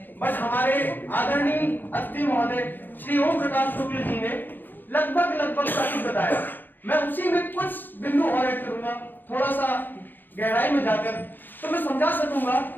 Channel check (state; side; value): late; right; 0.090 ms